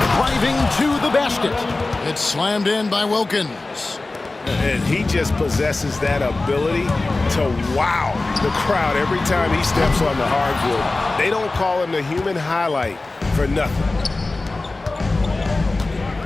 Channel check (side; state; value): right; quieter; 3.2 dB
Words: to the basket. It's slammed in by Wilkins. And he just possesses that ability to wow the crowd every time he steps on the hardwood. They don't call him the human highlight for nothing.